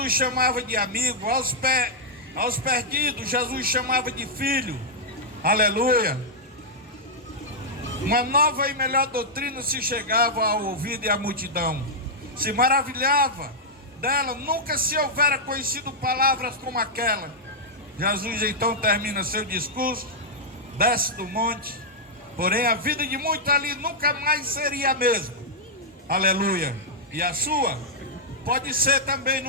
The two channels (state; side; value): normal; both; correlation -0.07